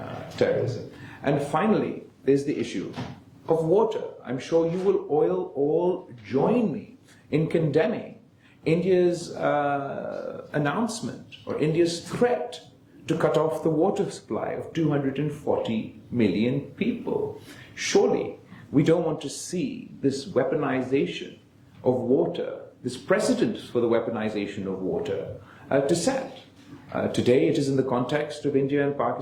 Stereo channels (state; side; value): identical; both; correlation 1.00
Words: terrorism. And finally, there's the issue of water. I'm sure you will all join me in condemning India's announcement or India's threat to cut off the water supply of 240 million people. Surely we don't want to see this weaponization of water, this precedent for the weaponization of water to set. Today it is in the context of India and